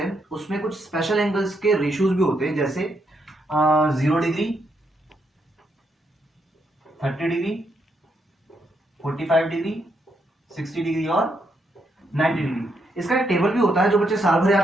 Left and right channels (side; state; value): both; normal; correlation 0.78